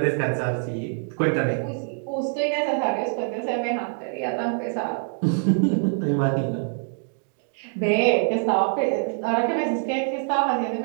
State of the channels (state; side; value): silent; left; 58 dB below the other